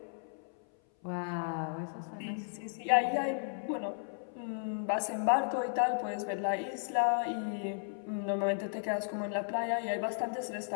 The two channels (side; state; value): right; silent; 55 dB below the other